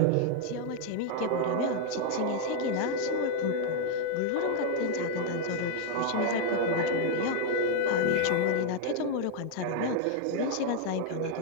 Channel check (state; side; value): different; both; correlation 0.00